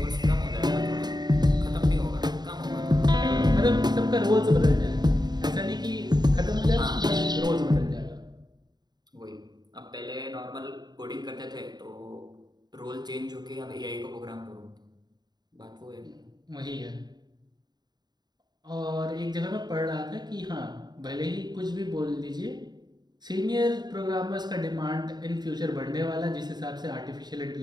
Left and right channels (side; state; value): left; late; 0.20 ms